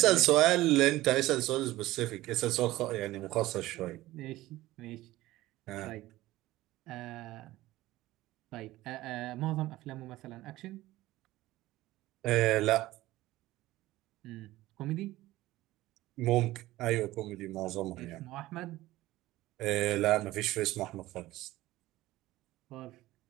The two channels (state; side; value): quieter; left; 17.0 dB